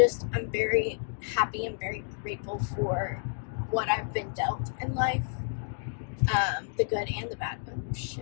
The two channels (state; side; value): silent; right; digital silence